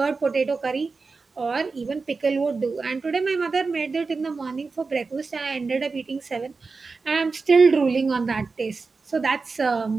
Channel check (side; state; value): left; quieter; 4.3 dB